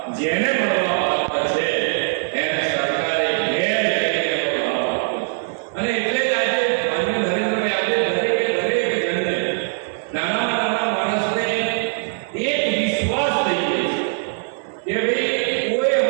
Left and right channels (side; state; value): left; silent; digital silence